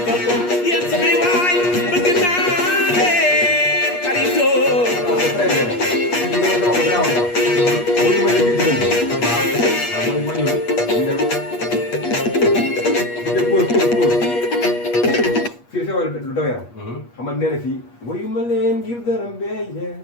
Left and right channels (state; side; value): late; right; 8.4 ms